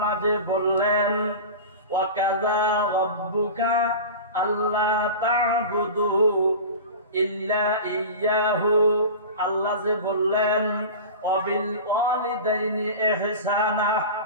যে বললেন ওয়াকাযা রাব্বুকা আল্লা তা'বুদু ইল্লা ইয়্যাহু। আল্লাহ যে বললেন ওয়াবিল ওয়ালিদাইনি ইহসানা,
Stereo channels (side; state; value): both; inverted; correlation -0.31